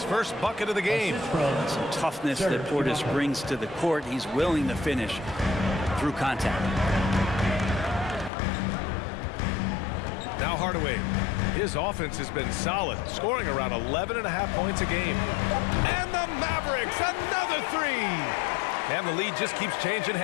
first bucket of the game. Some toughness that Portis brings to the court. He's willing to finish through contact. Now Hardaway. His offense has been solid, scoring around 11.5 points a game. And the Mavericks, another three. And the lead just keeps changing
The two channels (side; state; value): right; drops out; at 8.3 s